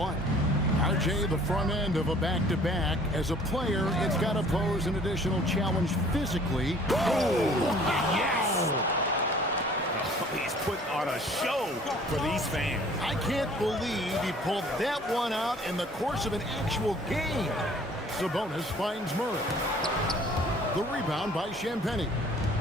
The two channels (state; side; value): normal; both; correlation 0.53